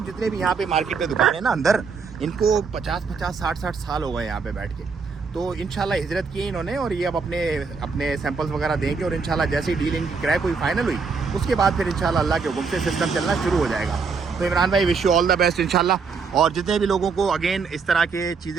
जितने भी यहाँ पे मार्केट में दुकान है ना अंदर, इनको 50-50 60-60 साल हो गए यहाँ पे बैठ के। तो इंशाल्लाह हिजरत की इन्होंने और ये अब अपने सैंपल्स वगैरह देंगे और इंशाल्लाह जैसे ही डीलिंग की क्रैक हुई, फाइनल हुई, उसके बाद फिर इंशाल्लाह अल्लाह के हुक्म से सिस्टम चलना शुरू हो जाएगा। तो इमरान भाई wish you all the best इंशाल्लाह। और जितने भी लोगों को अगेन इस तरह के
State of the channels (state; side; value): quieter; left; 5.1 dB